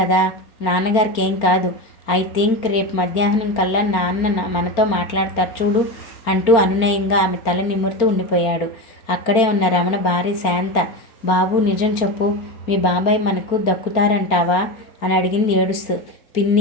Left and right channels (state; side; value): late; right; 4.4 ms